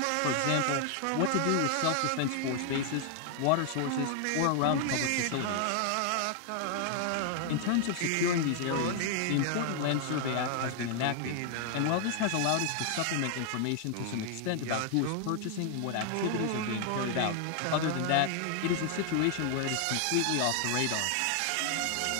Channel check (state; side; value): different; both; correlation 0.00